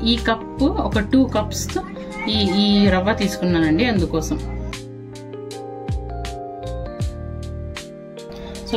ఈ కప్పు ఒక 2 కప్స్ ఈ రవ్వ తీసుకున్నానండి, అందుకోసం. సో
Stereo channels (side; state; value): both; identical; correlation 1.00